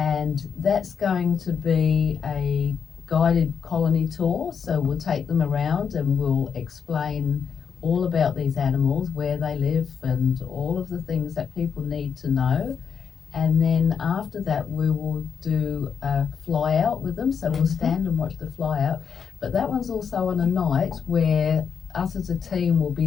that's going to be a guided colony tour, so we'll take them around and we'll explain all about these animals, where they live and all of the things that people need to know. And then after that we will do a fly out with them, so we'll stand and watch the fly out. But that one's also on a night where us as a team will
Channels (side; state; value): right; quieter; 6.7 dB